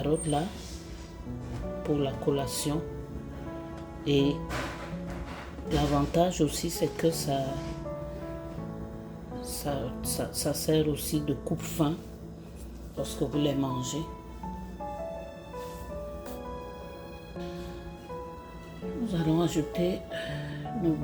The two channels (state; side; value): identical; both; correlation 1.00